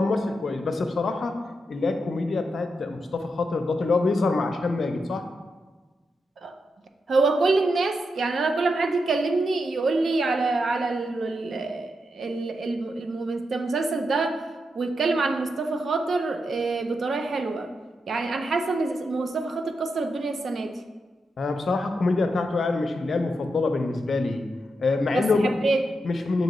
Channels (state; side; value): normal; both; correlation 0.85